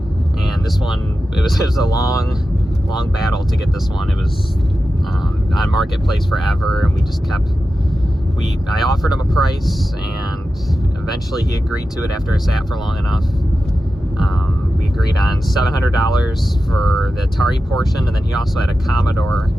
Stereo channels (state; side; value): normal; both; correlation 0.92